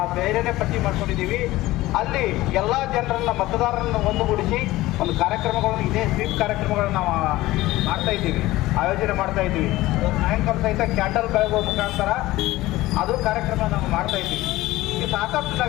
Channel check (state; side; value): quieter; right; 17.7 dB